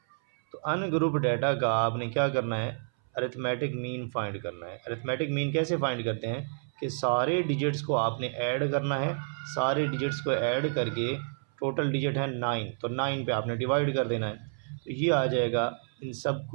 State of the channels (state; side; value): silent; left; 58 dB below the other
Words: तो अनग्रुप डाटा का आपने क्या करना है, अरिथमेटिक मीन फाइंड करना है। अरिथमेटिक मीन कैसे फाइंड करते हैं कि सारे डिजिट्स को आपने ऐड करना है, सारे डिजिट्स को ऐड करके टोटल डिजिट है 9, तो 9 पे आपने डिवाइड कर देना है। तो ये आ जाएगा, इन सब